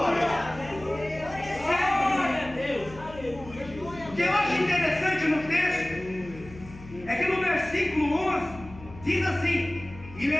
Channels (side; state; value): left; noise; hum, 17 dB below the sound